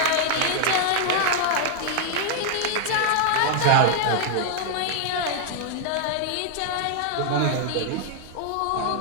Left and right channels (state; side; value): different; both; correlation 0.00